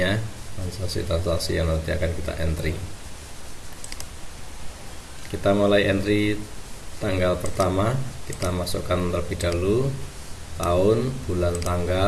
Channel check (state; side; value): identical; both; correlation 1.00